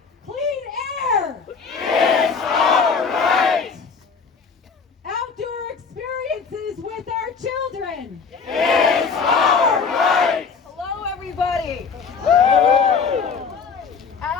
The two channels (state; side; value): quieter; right; 5.5 dB